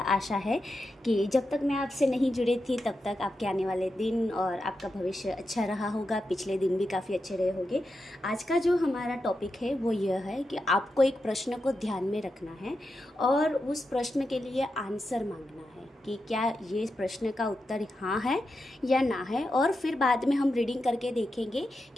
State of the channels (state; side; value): normal; both; correlation 0.88